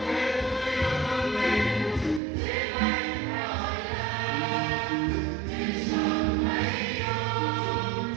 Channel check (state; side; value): drops out; left; at 2.2 s